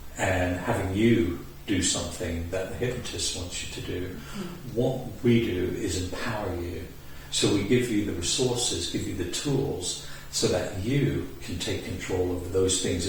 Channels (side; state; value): both; identical; correlation 1.00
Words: and having you do something that the hypnotist wants you to do, what we do is empower you. So we give you the resources, give you the tools, so that you can take control over those things